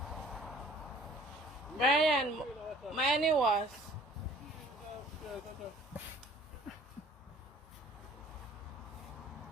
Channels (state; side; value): normal; both; correlation 0.52